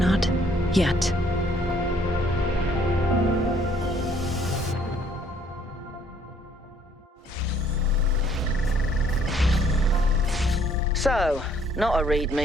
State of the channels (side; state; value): both; normal; correlation 0.63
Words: yet. So, not a